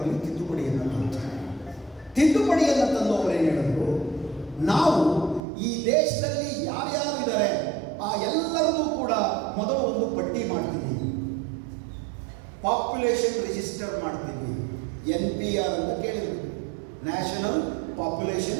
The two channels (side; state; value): left; drops out; at 5.4 s